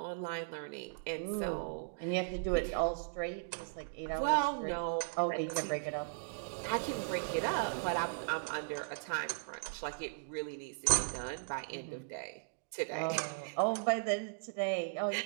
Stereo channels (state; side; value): silent; left; digital silence